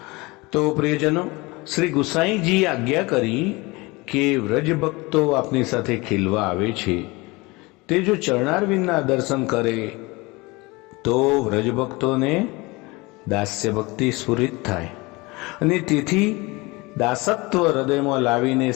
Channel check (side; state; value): right; quieter; 24.1 dB